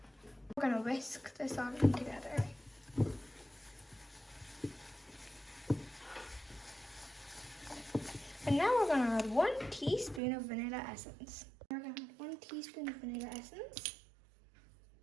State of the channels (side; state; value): left; drops out; at 10.2 s